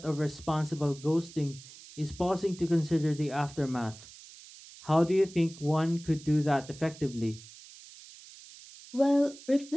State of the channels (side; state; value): right; noise; hiss, 19 dB below the sound